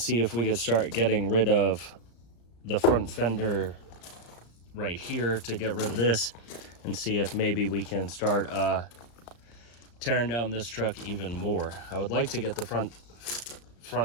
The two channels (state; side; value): late; right; 35 ms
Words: if we could start getting rid of the front fender right here to get rid of this, and see if maybe we can start tearing down this truck even more. I would like to get the front